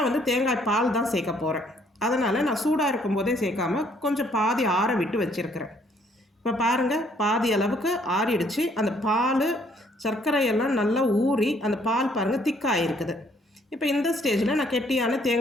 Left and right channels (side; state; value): both; normal; correlation 0.65